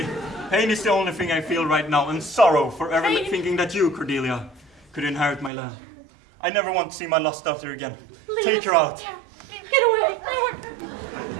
Pain is the only thing I feel right now, and sorrow for ever Pain. thinking that you, Cordelia, could inherit my land. I never want to see my lost daughter again. Leave Take us. her out. Yeah. Get away.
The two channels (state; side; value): drops out; left; at 5.5 s